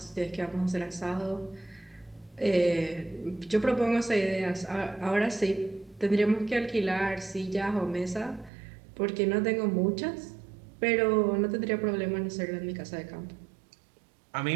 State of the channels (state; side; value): drops out; left; at 8.5 s